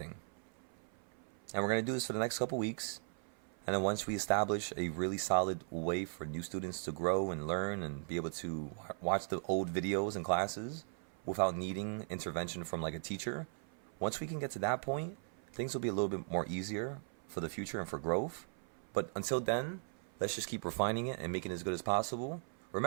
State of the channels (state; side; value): silent; left; 52 dB below the other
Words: And we're going to do this for the next couple weeks. And then once we establish a really solid way for new students to grow and learn and be able to watch the old videos and classes without needing intervention from like a teacher, once we can get to that point, things will be a little bit more easier for the future and for growth. But until then, let's just keep refining it and making it as good as possible.